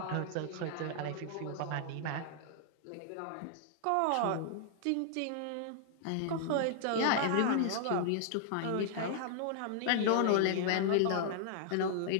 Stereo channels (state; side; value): different; both; correlation -0.01